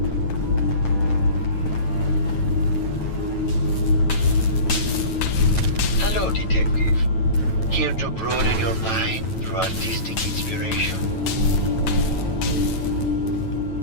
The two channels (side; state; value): right; late; 9.1 ms